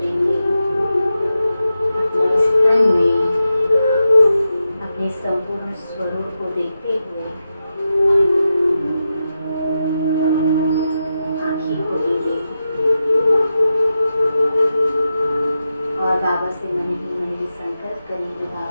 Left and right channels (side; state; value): both; inverted; correlation -0.89